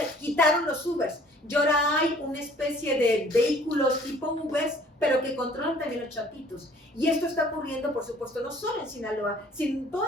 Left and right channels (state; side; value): normal; both; correlation 0.55